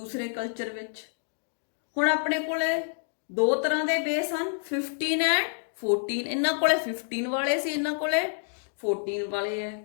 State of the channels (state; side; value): silent; right; digital silence